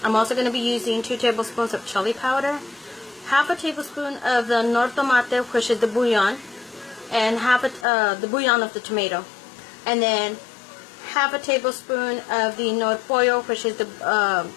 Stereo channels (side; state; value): right; drops out; at 7.9 s